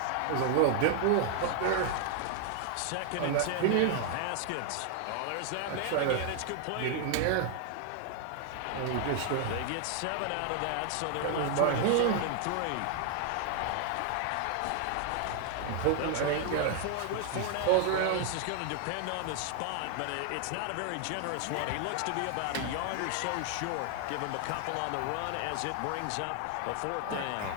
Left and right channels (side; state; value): both; different; correlation 0.00